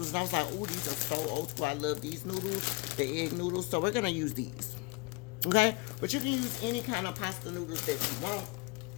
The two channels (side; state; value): right; quieter; 27.1 dB